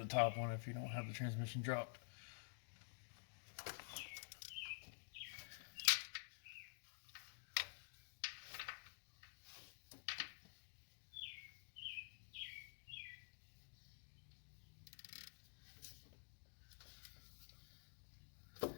top one if you don't have the transmission dropped.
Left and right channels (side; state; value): right; silent; digital silence